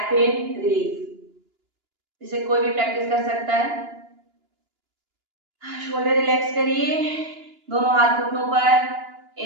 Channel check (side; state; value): left; late; 2.9 ms